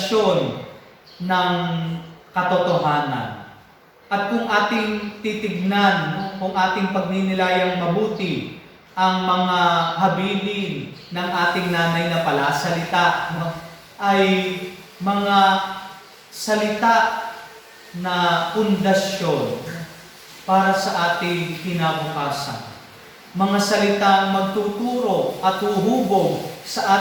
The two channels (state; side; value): identical; both; correlation 1.00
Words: ng katotohanan. At kung ating titignan, no, kung ating pagninilayang mabuti ang mga habilin ng ating nanay na palasalita, no, ay mga salita na pundasyon para sa ating kinabukasan. Mga salitang magtuturo at huhubog